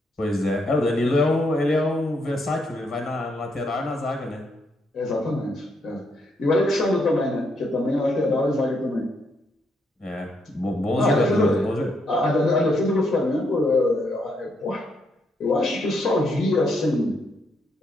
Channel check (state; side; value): normal; both; correlation 0.76